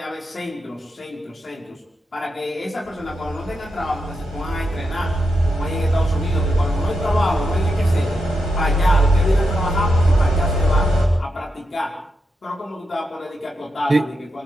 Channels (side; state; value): both; normal; correlation 0.85